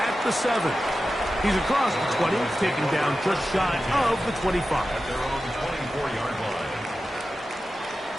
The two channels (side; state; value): both; normal; correlation 0.93